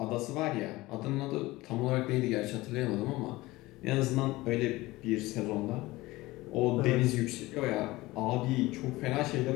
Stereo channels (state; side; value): quieter; right; 19.6 dB